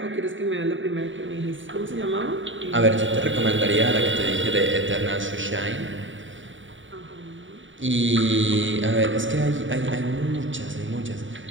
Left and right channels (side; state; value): left; late; 0.56 ms